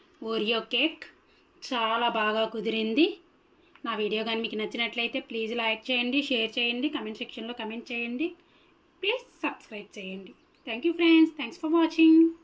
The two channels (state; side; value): identical; both; correlation 1.00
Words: ఓరియో కేక్ చాలా బాగా కుదిరింది. నా వీడియో కానీ మీకు నచ్చినట్లయితే ప్లీజ్ లైక్ చేయండి, షేర్ చేయండి, కమెంట్ సెక్షన్లో కమెంట్ చేయండి, ప్లీజ్ సబ్స్క్రైబ్ చేయండి. Thank you friends. Thanks for watching.